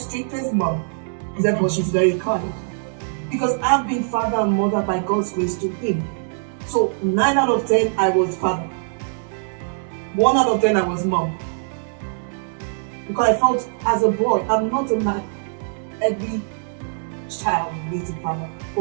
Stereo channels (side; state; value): left; silent; 64 dB below the other